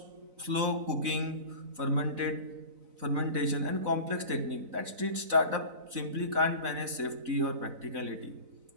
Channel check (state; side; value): late; left; 4.0 ms